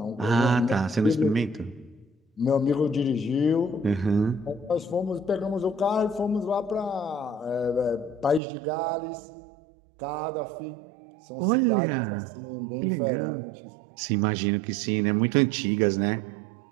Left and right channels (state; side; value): drops out; left; at 8.4 s